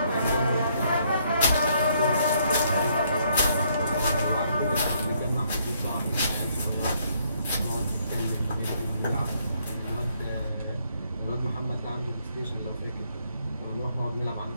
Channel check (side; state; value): both; inverted; correlation -0.70